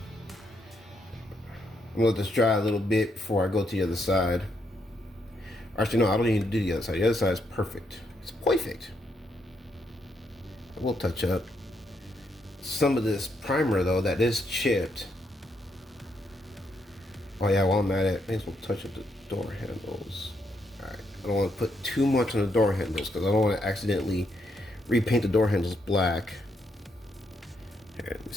I'm gonna let this dry a little bit before I go to the other side. Actually, no, I don't need to do the other side. The other side is perfect. It's perfect. I will touch up some of this primer though that is chipped. Oh yeah, while I'm at it, may as well touch up the door handles. Alright, I don't want to put too much on the door handles because I don't want to accidentally repaint the door handles black. Here, let me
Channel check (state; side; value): normal; both; correlation 0.77